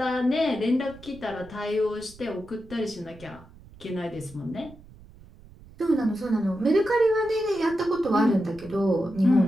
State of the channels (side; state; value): right; noise; rumble, 22 dB below the sound